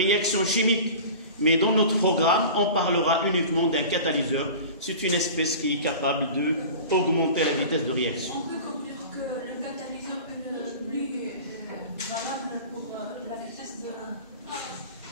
chimique. Mais dans notre programme, on parlera uniquement d'un catalyseur. C'est une espèce qui est capable d'augmenter la vitesse de réaction. On peut conclure que le catalyseur est plus valable pour la vitesse de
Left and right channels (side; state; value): both; inverted; correlation -0.37